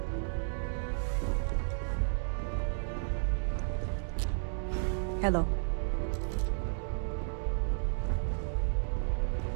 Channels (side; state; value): left; silent; digital silence